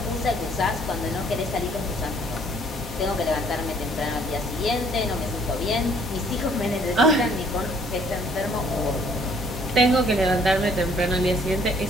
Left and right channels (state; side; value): normal; both; correlation 0.61